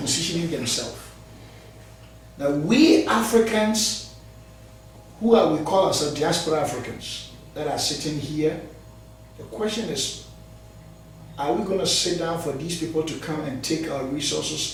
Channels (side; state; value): both; identical; correlation 1.00